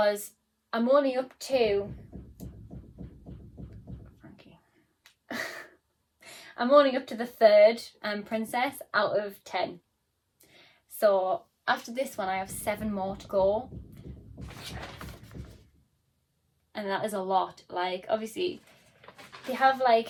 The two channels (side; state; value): both; identical; correlation 1.00